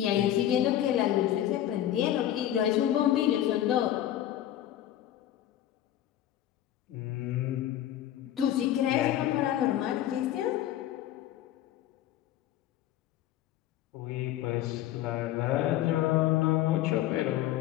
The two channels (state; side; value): quieter; right; 12.3 dB